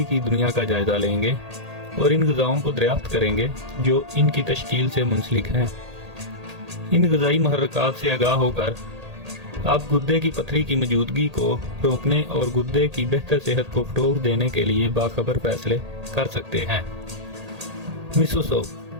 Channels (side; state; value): left; late; 1.8 ms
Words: की दुनिया का जायजा लेंगे और इन ग़िज़ाओं को दरियाफ्त करेंगे जो इनकी तश्कील से मुंसलिक हैं। इन ग़िज़ाई मुहर्रिकात से आगाह होकर आप गुर्दे की पथरी की मौजूदगी को रोकने और गुर्दे की बेहतर सेहत को फ़रोग़ देने के लिए बाखबर फैसले कर सकते हैं। मिसो सूप